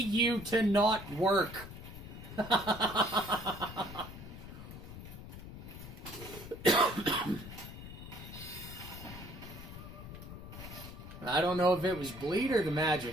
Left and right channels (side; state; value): left; noise; rumble, 12 dB below the sound